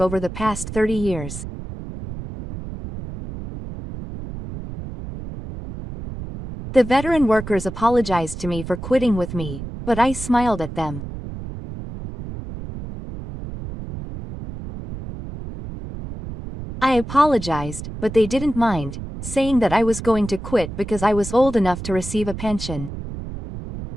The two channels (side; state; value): right; noise; rumble, 9 dB below the sound